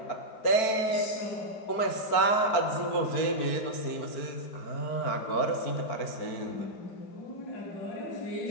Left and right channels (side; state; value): right; late; 4.5 ms